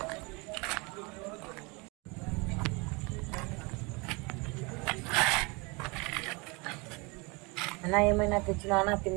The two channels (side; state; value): left; quieter; 27.9 dB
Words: అన్నా ఏమైనా తెచ్చినా